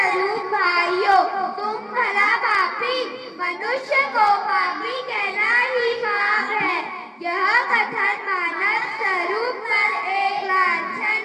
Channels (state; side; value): identical; both; correlation 1.00